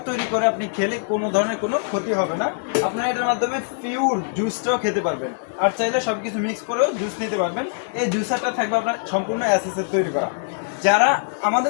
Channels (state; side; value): silent; right; digital silence